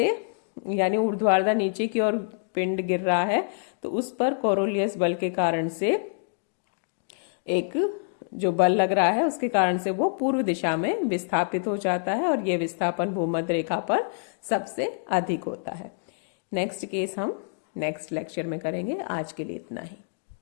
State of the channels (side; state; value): right; silent; digital silence